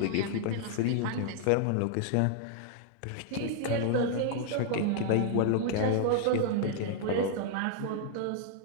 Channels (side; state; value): both; different; correlation 0.00